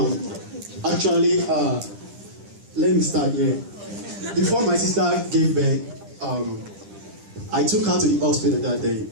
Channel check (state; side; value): late; left; 10 ms